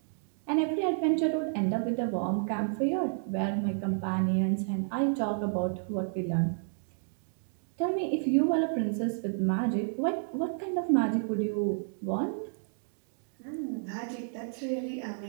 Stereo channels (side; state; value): left; silent; digital silence